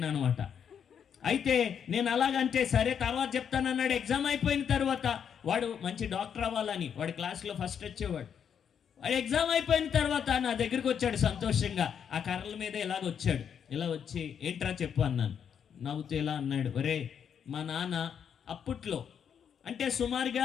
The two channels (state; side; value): quieter; right; 7.9 dB